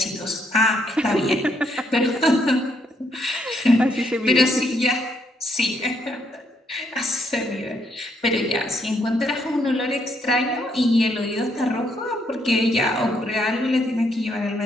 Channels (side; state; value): both; normal; correlation 0.74